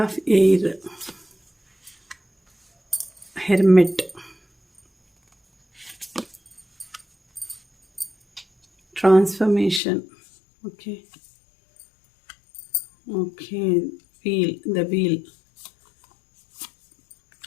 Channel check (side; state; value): right; drops out; at 9.8 s